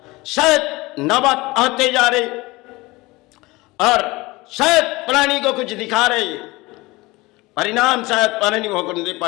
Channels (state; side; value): quieter; right; 21.8 dB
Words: शायद नौबत आते जा रहे, और शायद प्राणी को कुछ दिखा रहे, परिणाम शायद प्राणी भोगने